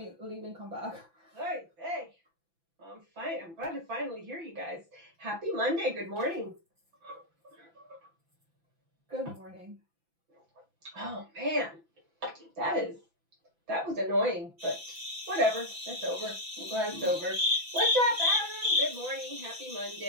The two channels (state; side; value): late; left; 5.9 ms